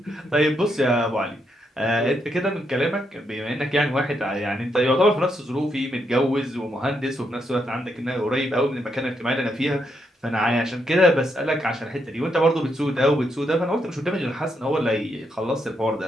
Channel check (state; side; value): normal; both; correlation 0.79